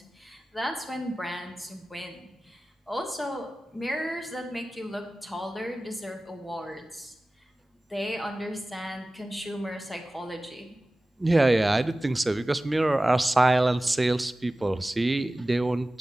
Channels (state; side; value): normal; both; correlation 0.97